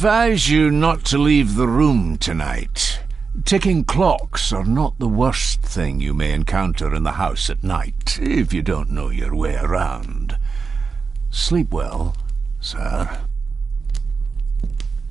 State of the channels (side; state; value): left; quieter; 5.0 dB